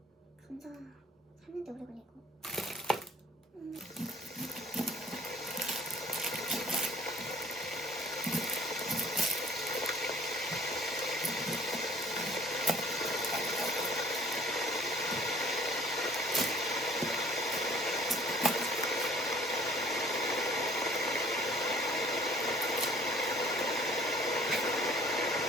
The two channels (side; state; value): both; normal; correlation 0.54